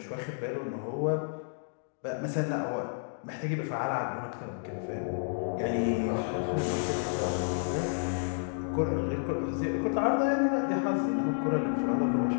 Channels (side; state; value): right; silent; digital silence